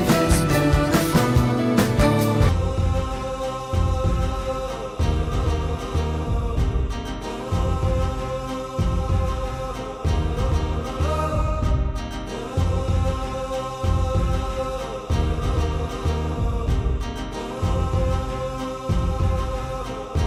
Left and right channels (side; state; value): both; identical; correlation 1.00